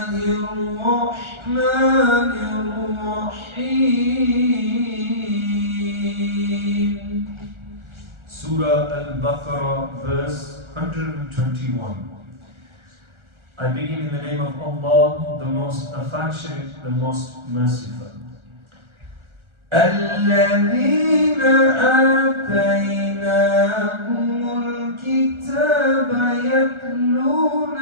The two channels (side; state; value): left; late; 1.4 ms